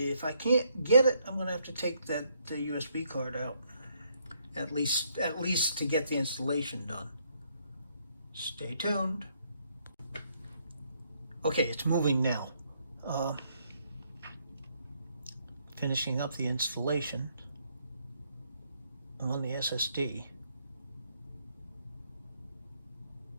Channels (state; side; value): inverted; both; correlation -0.72